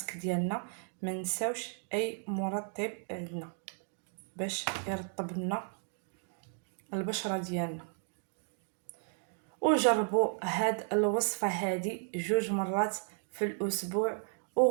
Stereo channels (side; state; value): left; silent; 55 dB below the other